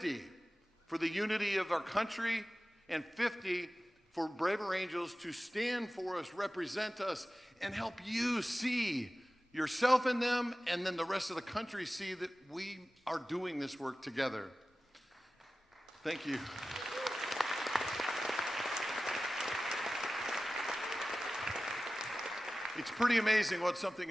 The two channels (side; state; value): both; normal; correlation 0.96